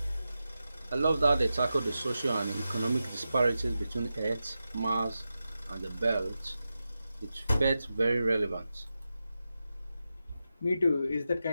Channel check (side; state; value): both; inverted; correlation -0.91